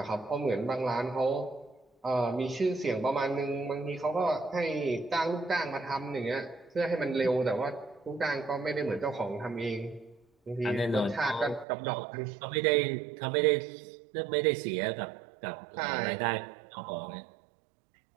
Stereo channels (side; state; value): left; drops out; at 11.7 s